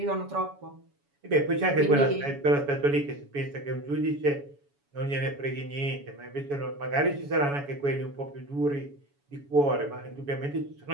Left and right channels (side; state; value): left; late; 7.1 ms